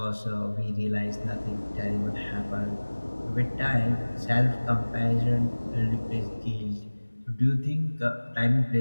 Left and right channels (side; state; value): both; inverted; correlation -1.00